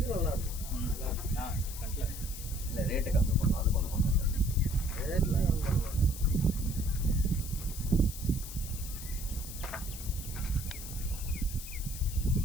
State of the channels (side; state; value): left; noise; hiss, 11 dB below the sound